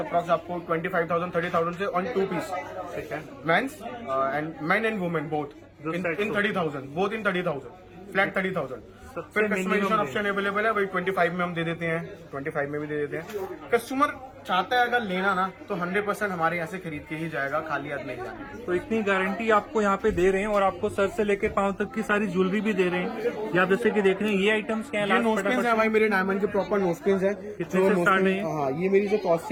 आपको 25,000 30,000 से ऑन 2 पीस। ठीक है, men's and men and women both in 30,000, both in 30,000। Flat 30,000। सबसे फिर कस्टमाइजेशन minimum ऑप्शन अवेलेबल है भाई, 25 में हम दे देते हैं, 25 में भी दे देते हैं। कस्टमर चाहता है अगर लेना ना तो 100% हमारे यहाँ से खरीद के ही जाएगा, खाली हाथ नहीं जाएगा। तो इतनी गारंटी आपको यहाँ पे दे रहे हैं और आपको सर से लेकर पांव तक की सारी ज्वेलरी भी दे रहे हैं। ये आप जैसे कि देख रहे हैं ये आइटम्स क्या ये नोस्पिन है भाई, मेरे डायमंड के प्रॉपर नोस्पिन है। कितने से स्टार्ट है? हाँ, ये मेरी जो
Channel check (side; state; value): both; identical; correlation 1.00